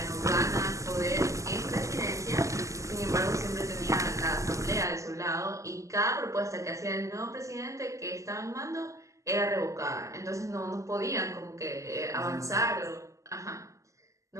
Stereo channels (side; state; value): left; late; 0.16 ms